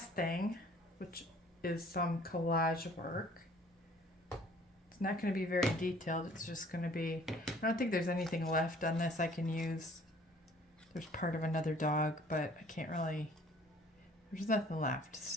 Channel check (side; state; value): both; normal; correlation 0.55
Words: thing, which is some collage work. It's not going to be very detailed. It's just going to be, I don't think there's anything left on this I can use. There's part of another dog, but I can't really, there's nothing left.